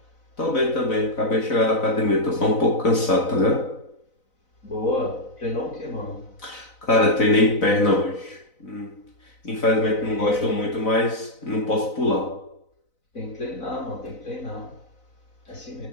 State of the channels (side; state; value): right; late; 4.0 ms